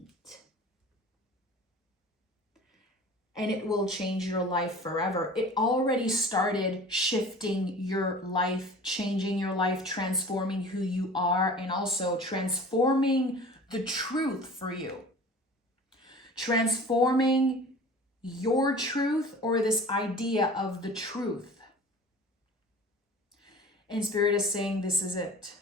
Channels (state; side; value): normal; both; correlation 0.42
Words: And it will change your life forever. It already started shifting your life, changing your life, transforming who you are, and also transforming the truth for you. Transforming your truth, or this idea of the truth. And Spirit is saying, this is it.